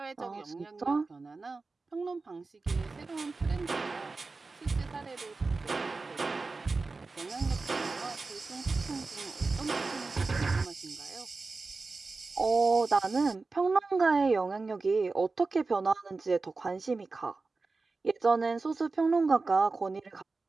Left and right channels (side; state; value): left; quieter; 3.9 dB